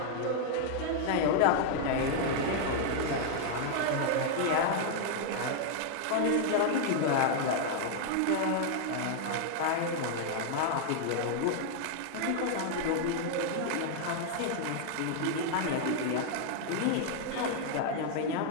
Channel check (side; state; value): both; different; correlation 0.00